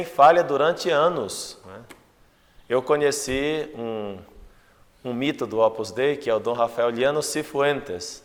falha durante anos. Eu conheci um mito do Opus Dei, que é o Dom Rafael Liano Cifuentes.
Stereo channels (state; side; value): identical; both; correlation 1.00